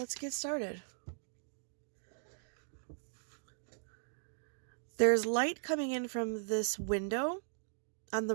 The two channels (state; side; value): silent; left; digital silence